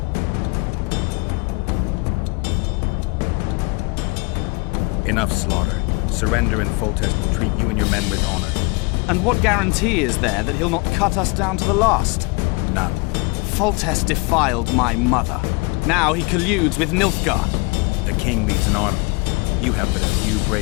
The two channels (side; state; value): right; quieter; 28.4 dB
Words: Enough slaughter. Surrender and Foltest will treat you and your men with honor. And what guarantee is there that he'll not cut us down to the last? None. Foltest defiled my mother. Now he colludes with Nilfgaard. The king leads an army. You have but a few